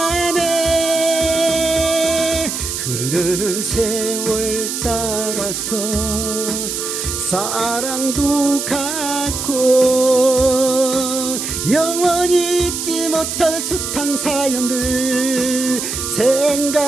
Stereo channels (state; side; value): noise; right; hiss, 4 dB below the sound